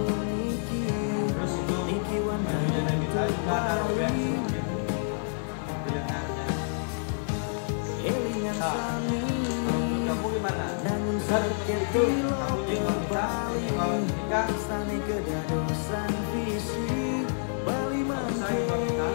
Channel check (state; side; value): silent; right; 59 dB below the other